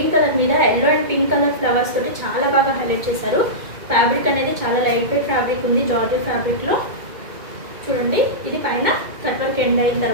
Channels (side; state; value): left; late; 2.2 ms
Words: కలర్ మీద yellow and pink colour flowers తోటి చాలా బాగా హైలైట్ చేశారు. ఫ్యాబ్రిక్ అనేది చాలా లైట్ వెయిట్ ఫ్యాబ్రిక్ ఉంది, జార్జెట్ ఫ్యాబ్రిక్లో. చూడండి, ఇది పైన కట్ వర్క్ ఎండ్ అయిన